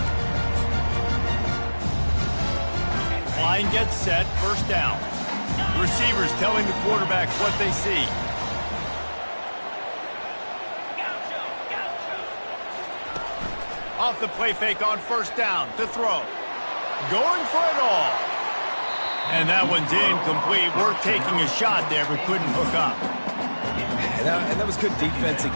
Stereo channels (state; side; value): inverted; both; correlation -1.00